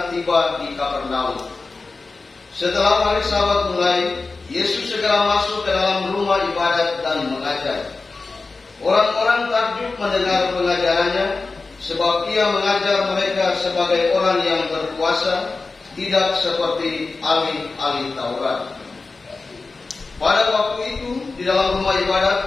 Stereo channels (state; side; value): quieter; right; 3.8 dB